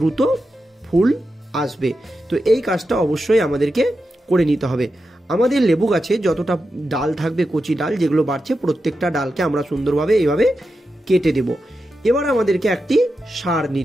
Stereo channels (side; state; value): both; normal; correlation 0.89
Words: ফুল আসবে। তো এই কাজটা অবশ্যই আমাদেরকে করে নিতে হবে। আমাদের লেবু গাছে যতটা ডাল থাকবে, কচি ডাল যেগুলো বাড়ছে, প্রত্যেকটা ডালকে আমরা সুন্দরভাবে এইভাবে কেটে দেব। এবার আমাদেরকে একটি সার